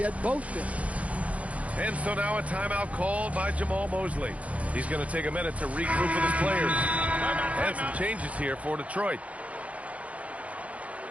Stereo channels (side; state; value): left; late; 0.066 ms